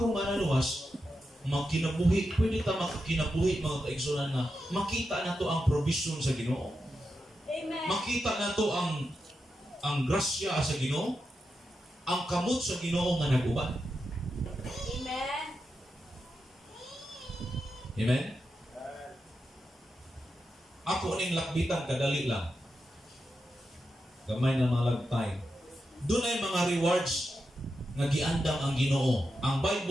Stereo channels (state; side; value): normal; both; correlation 0.88